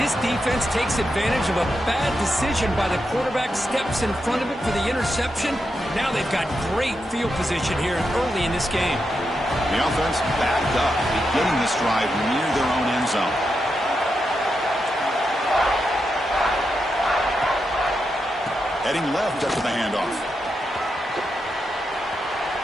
defense takes advantage of a bad decision by the quarterback, steps in front of it for the interception. Now they've got great field position here early in this game. The offense backed up, beginning this drive near their own end zone. Heading left after the handoff.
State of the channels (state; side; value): normal; both; correlation 0.86